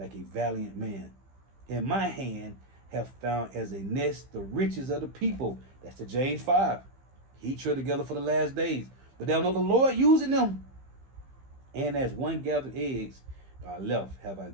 a valiant man. In my hand have found as a nest the riches of the people. That's the James 5. He tread together for the last days, but thou know the Lord using them. And as one gathered eggs, I left have I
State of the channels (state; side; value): late; left; 15 ms